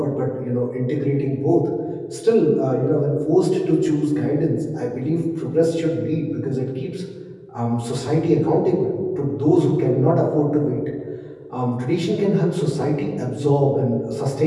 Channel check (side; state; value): both; identical; correlation 1.00